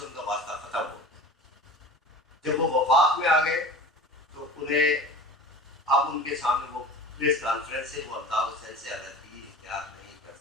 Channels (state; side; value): normal; both; correlation 0.36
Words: ان کا واسطہ ختم ہو. جب وہ وفاق میں آ گئے تو انہیں اب ان کے سامنے وہ پریس کانفرنس سے وہ الطاف حسین سے علیحدگی اختیار نہیں کر